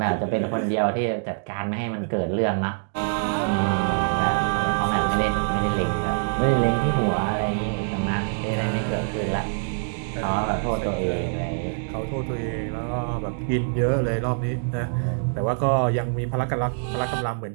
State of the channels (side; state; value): left; silent; digital silence